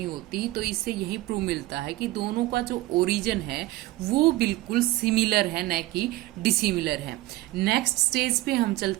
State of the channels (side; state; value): left; quieter; 18.1 dB